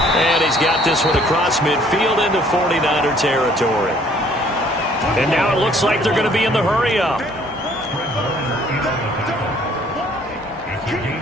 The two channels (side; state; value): both; normal; correlation 0.59